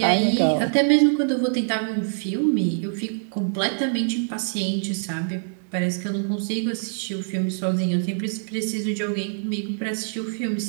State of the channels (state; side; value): silent; left; digital silence